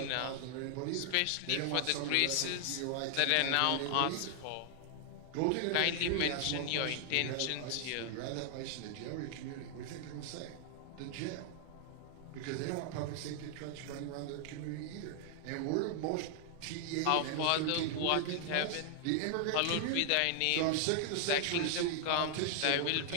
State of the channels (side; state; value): both; different; correlation 0.00